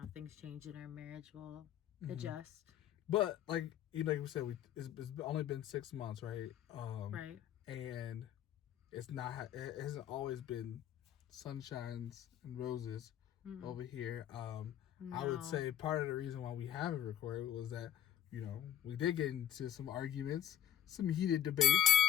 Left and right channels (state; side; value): quieter; right; 10.8 dB